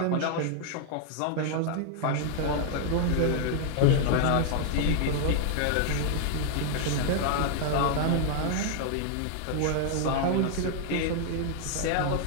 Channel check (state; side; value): different; both; correlation 0.00